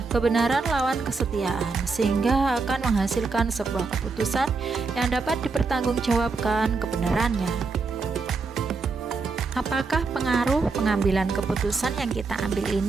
kebenaran lawan kesetiaan, sehingga akan menghasilkan sebuah keputusan yang dapat dipertanggungjawabkan kebenarannya. Apakah pengaruh pengambilan keputusan yang kita ambil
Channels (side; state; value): left; quieter; 4.3 dB